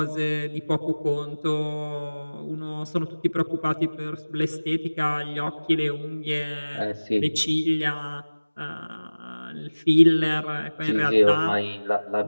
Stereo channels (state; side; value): inverted; both; correlation -1.00